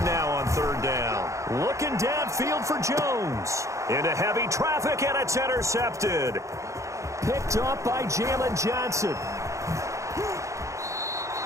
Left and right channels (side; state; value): left; late; 0.15 ms